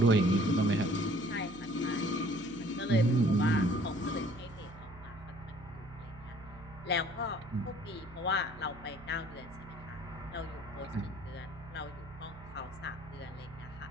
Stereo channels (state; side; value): noise; right; hum, 18 dB below the sound